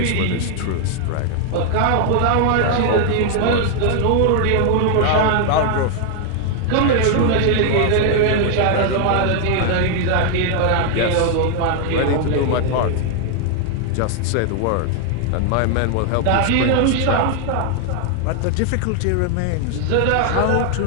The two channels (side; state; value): both; different; correlation 0.00